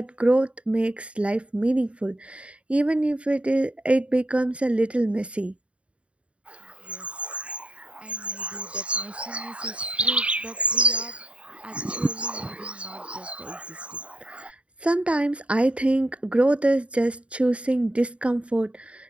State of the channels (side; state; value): left; late; 0.063 ms